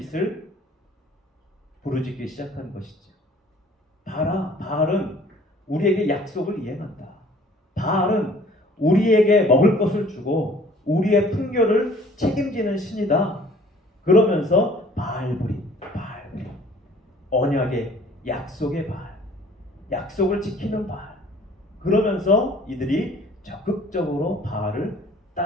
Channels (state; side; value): normal; both; correlation 0.54